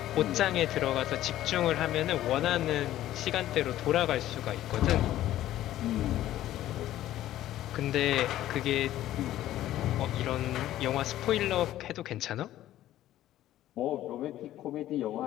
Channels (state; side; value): quieter; right; 13.6 dB